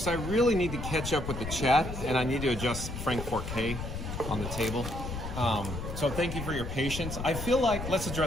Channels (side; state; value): left; noise; rumble, 6 dB below the sound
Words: I really need to catch up with the chat, and I need to adjust Frank 4K on the table. So thank you for your patience. I feel like, let's